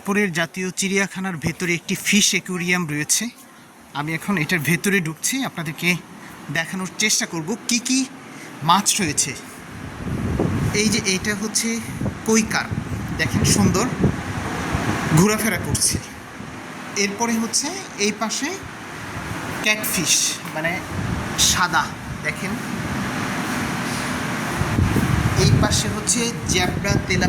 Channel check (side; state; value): both; identical; correlation 1.00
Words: জাতীয় চিড়িয়াখানার ভেতরে একটি ফিশ অ্যাকুয়ারিয়াম রয়েছে। আমি এখন এটার ভেতরে ঢুকছি, আপনাদেরকে দেখানোর চেষ্টা করব কি কি মাছ রয়েছে। এই যে এটা হচ্ছে কই কার্প, দেখেন সুন্দর ঘোরাফেরা করছে। এরপরে হচ্ছে এই পাশে ক্যাটফিশ, মানে সাদা, দেখেন। এই পাশে হচ্ছে জ্যাবরা